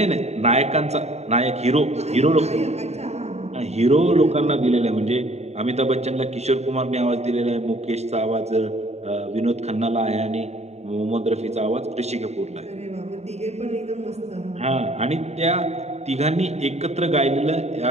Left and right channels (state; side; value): late; left; 0.32 ms